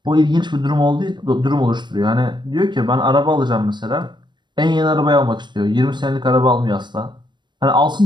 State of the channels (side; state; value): left; late; 0.22 ms